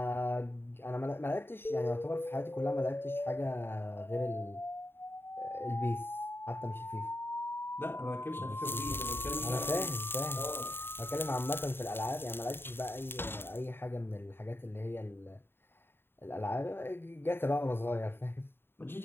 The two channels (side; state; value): right; late; 0.11 ms